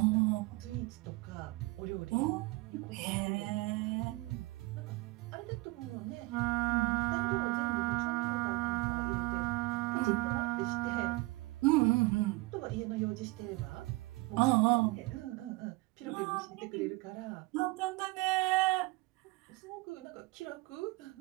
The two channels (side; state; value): left; quieter; 22.4 dB